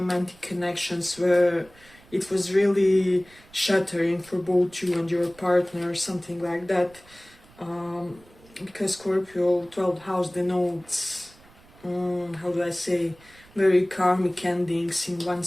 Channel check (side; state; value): right; noise; rumble, 26 dB below the sound